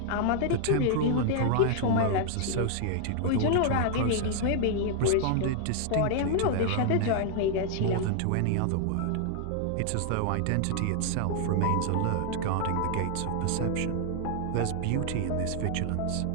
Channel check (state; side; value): different; both; correlation 0.00